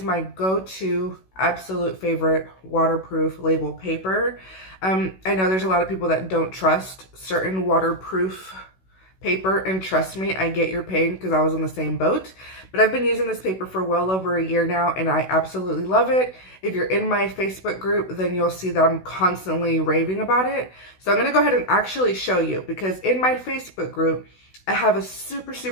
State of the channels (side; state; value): right; late; 16 ms